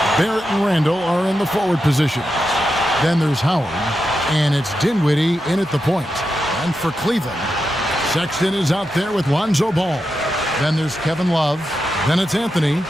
Barrett and Randall are in the forward position. Then there's Howard, and it's Dinwiddie in at the point. And for Cleveland, Sexton is out there with Lonzo Ball. Then there's Kevin Love. Then it's Anthony,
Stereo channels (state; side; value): normal; both; correlation 0.88